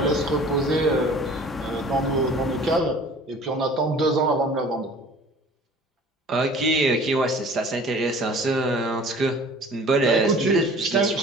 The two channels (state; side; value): normal; both; correlation 0.47